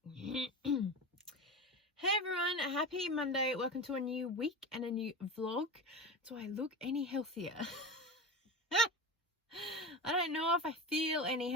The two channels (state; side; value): normal; both; correlation 0.26